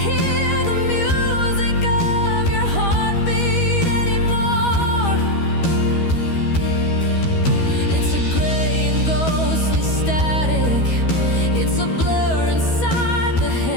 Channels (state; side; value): late; right; 13 ms